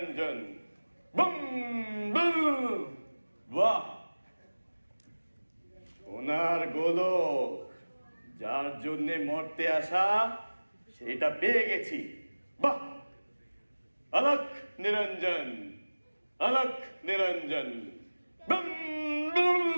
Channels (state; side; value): inverted; both; correlation -1.00